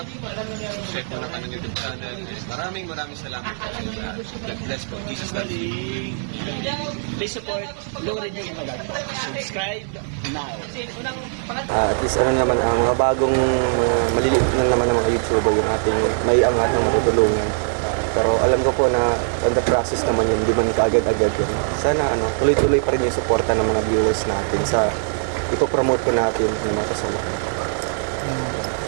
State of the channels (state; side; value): silent; left; digital silence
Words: Subscribe po ng kanyang YouTube channel. And maraming salamat po sa inyo lahat. God bless po. Jesus loves you. Please support Lori D. Magalpok. Subscribe now. At least naman, ang mga bagong maliliit na naman ng mga YouTuber yung ating may angat ng matutulungan. Pero alam ko po na on the process naman yun, di man kaagad-agad yun. Sana tuloy-tuloy pa rin yung suporta ng mga viewers natin sa ipopromote po natin ng mga kasama.